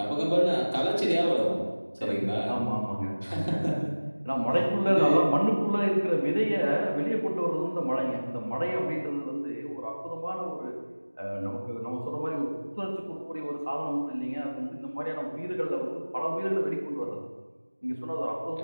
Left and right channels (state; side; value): inverted; both; correlation -1.00